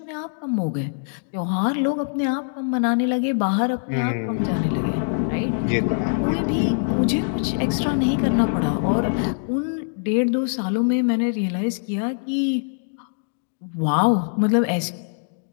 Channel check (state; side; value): silent; right; digital silence